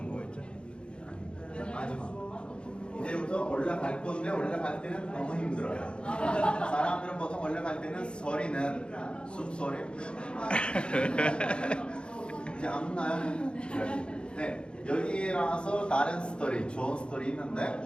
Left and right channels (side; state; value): right; late; 0.054 ms